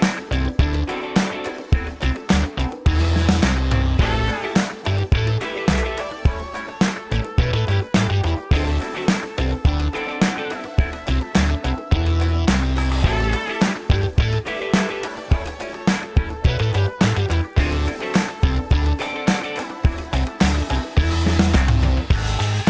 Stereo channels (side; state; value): both; identical; correlation 1.00